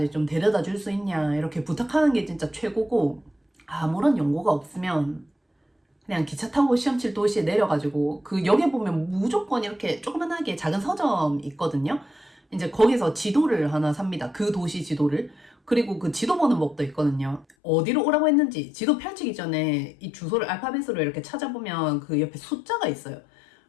좀 데려다 줄 수 있냐 이렇게 부탁하는 게 진짜 최고고, 아무런 연고가 없으면 그냥 기차 타고 시험 칠 도시에 내려가지고 그 역에 보면 무조건 이렇게 조그만하게 작은 서점 있거든요. 이제 거기서 지도를 하나 삽니다. 그 도시 지도를. 그리고 그 지도 보는 법도 있거든요. 어디로 오라고 했는지 지도 펼치기 전에 이 주소를 알파벳으로 이렇게 찾아보면 그 옆에 숫자가 있어요.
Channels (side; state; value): right; drops out; at 17.6 s